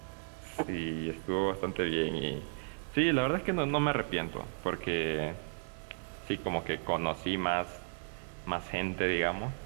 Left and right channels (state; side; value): silent; left; 55 dB below the other